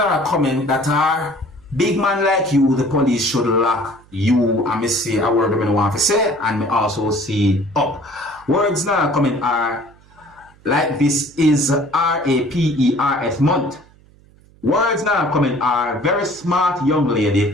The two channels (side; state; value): right; noise; hum, 28 dB below the sound